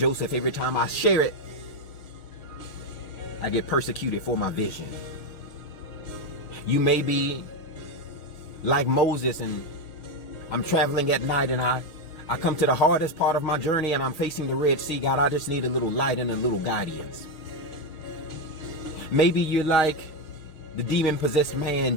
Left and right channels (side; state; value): right; late; 6.3 ms